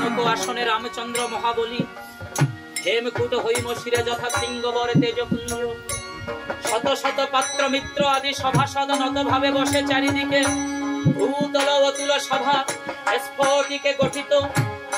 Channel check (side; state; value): both; identical; correlation 1.00